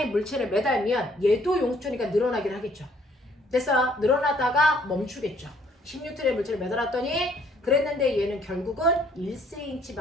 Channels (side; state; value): both; normal; correlation 0.64